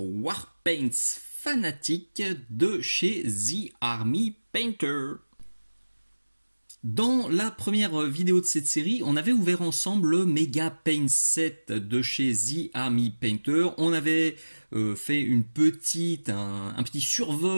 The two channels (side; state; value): both; inverted; correlation -1.00